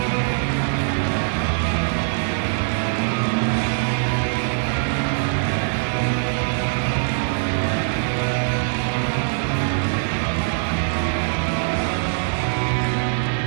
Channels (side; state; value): left; silent; digital silence